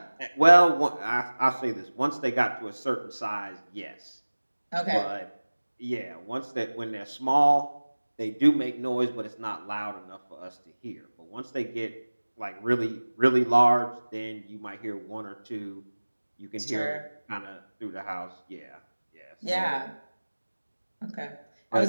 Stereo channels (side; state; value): both; inverted; correlation -1.00